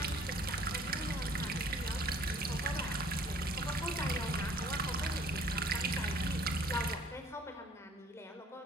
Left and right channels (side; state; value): both; normal; correlation 0.56